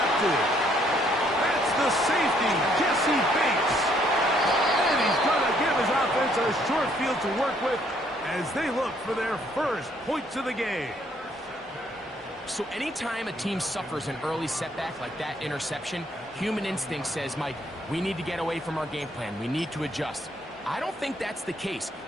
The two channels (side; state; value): both; normal; correlation 0.67